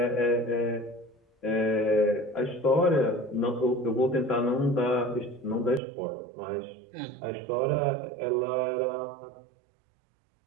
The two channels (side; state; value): left; drops out; at 5.8 s